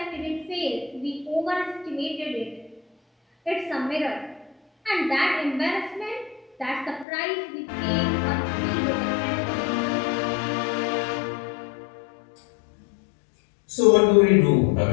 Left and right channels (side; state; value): right; drops out; at 7.1 s